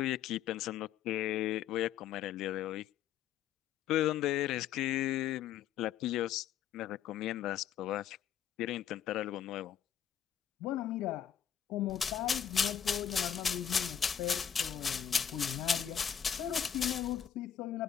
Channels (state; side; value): quieter; right; 9.0 dB